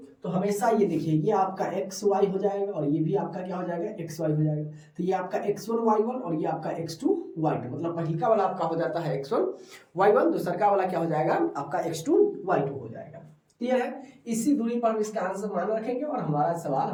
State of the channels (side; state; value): both; identical; correlation 1.00